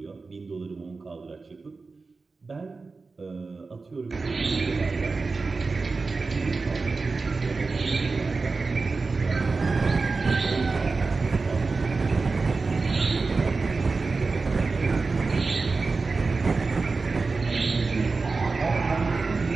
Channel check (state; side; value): quieter; left; 4.1 dB